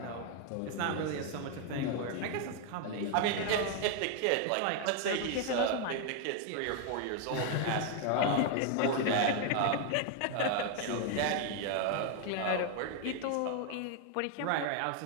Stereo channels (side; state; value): both; different; correlation 0.00